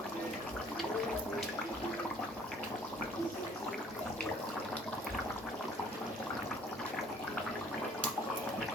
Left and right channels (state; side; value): normal; both; correlation 0.56